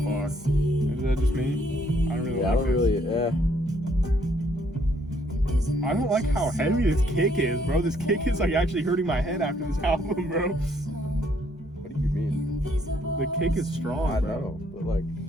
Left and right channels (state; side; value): normal; both; correlation 0.67